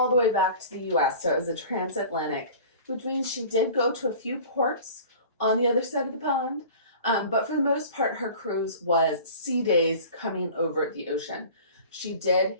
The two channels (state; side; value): inverted; both; correlation -0.42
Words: the way back to the US. So it was a transatlantic, which means she did go to a few ports on the other side of the pond. But for the most part, her cruise was sea days coming over the ocean. She did